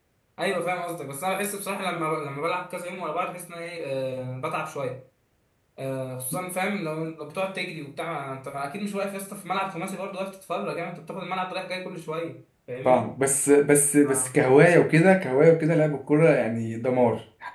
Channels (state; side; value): identical; both; correlation 1.00